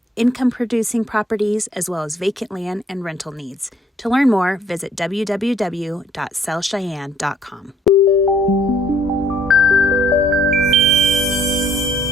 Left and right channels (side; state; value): both; normal; correlation 0.63